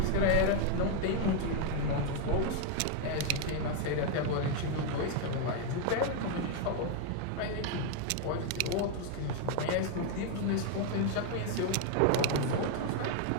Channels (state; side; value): different; both; correlation 0.01